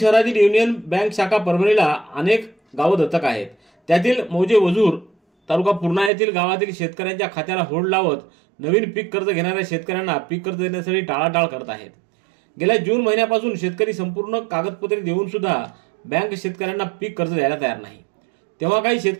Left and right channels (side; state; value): left; drops out; at 6.1 s